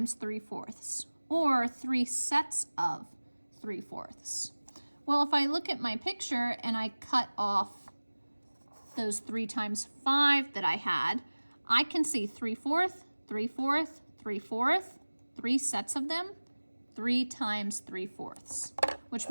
3/4, or 3 sets of 3/4. Well, if I look at my picture and I cut off those 3 times 5 that I had, I can see 3/4, 3/4, 3/4, 3 sets of them, 3 times 3/4, which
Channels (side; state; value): both; inverted; correlation -1.00